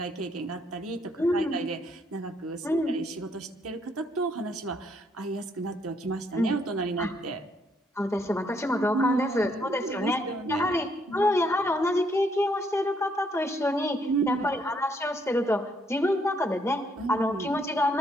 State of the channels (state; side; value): normal; both; correlation 0.71